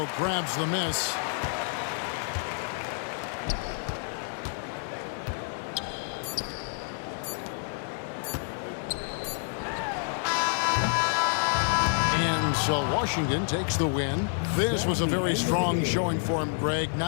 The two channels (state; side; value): silent; right; 59 dB below the other